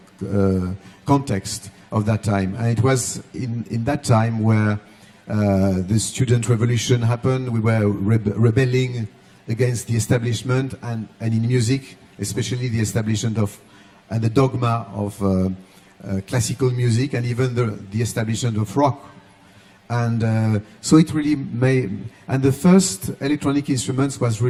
context of that time. And it was in that time where the student revolution happened. We were rebelling against the establishment, and in music, especially the establishment of and the dogma of classical music, and even the establishment of rock. And so it really made, and the first electronic instruments was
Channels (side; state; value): both; identical; correlation 1.00